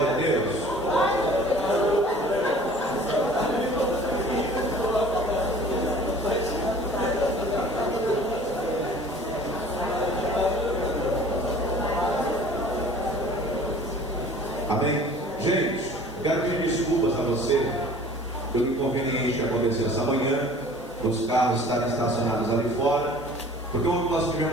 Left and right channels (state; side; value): noise; right; hiss, 27 dB below the sound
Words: a Deus. Amém. Gente, eu quero pedir desculpas a você pelo inconveniente que aconteceu essa manhã, os carros estarem estacionados ali fora, porque ontem nós